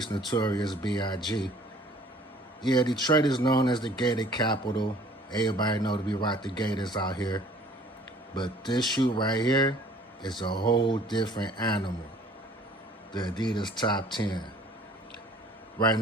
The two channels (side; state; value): both; normal; correlation 0.54